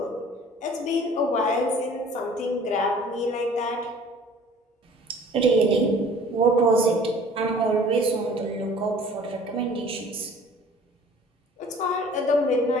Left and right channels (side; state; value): both; normal; correlation 0.50